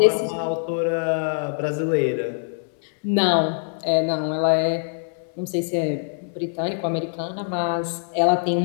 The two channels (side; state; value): right; silent; 63 dB below the other